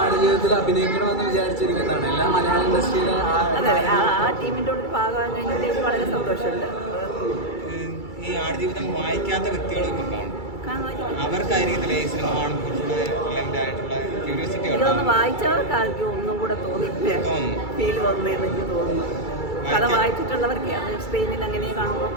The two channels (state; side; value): late; right; 2.3 ms